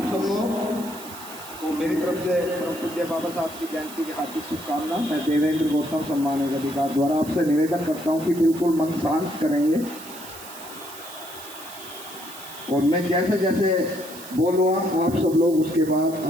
सब लोग तो मेरी तरफ से परम पूज्य बाबा साहब की जयंती की हार्दिक शुभकामना। मैं देवेंद्र गौतम सम्मानित अधिकार द्वारा आपसे निवेदन करता हूं कि बिल्कुल मन शांत करेंगे और मैं जैसे जैसे बोलूँगा आप सब लोग उसके बाद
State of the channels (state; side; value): noise; right; hiss, 15 dB below the sound